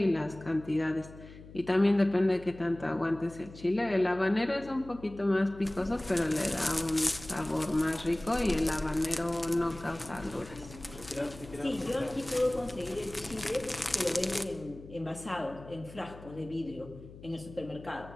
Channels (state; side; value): noise; left; hum, 17 dB below the sound